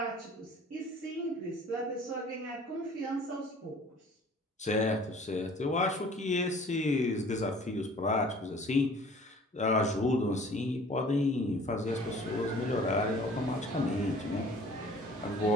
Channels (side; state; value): both; normal; correlation 0.50